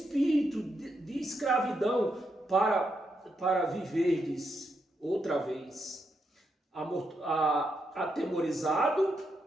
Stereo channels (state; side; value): normal; both; correlation 0.82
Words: de escravidão para viverdes outra vez, atemorizado,